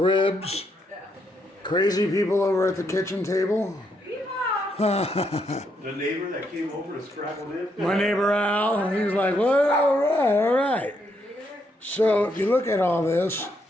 crazy people over at the kitchen table. The neighbor that came over to scrabble in? My neighbor Al, he's like, well, all right, all right. So if you look at all this,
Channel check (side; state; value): both; normal; correlation 0.76